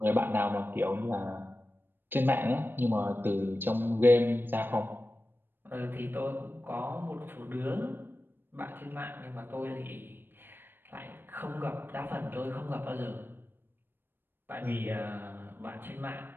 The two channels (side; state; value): left; late; 0.097 ms